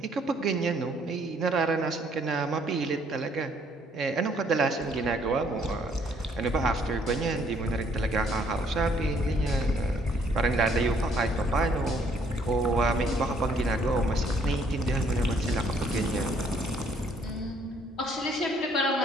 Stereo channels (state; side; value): normal; both; correlation 0.65